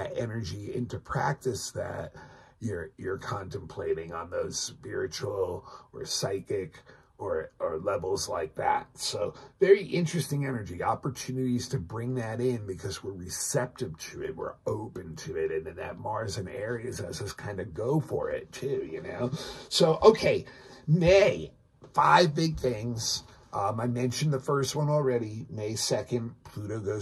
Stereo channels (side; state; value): both; identical; correlation 1.00